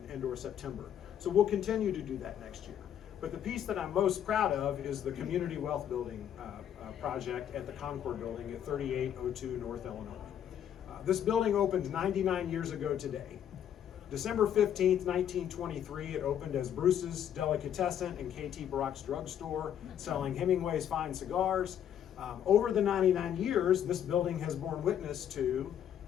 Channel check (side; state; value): right; quieter; 9.7 dB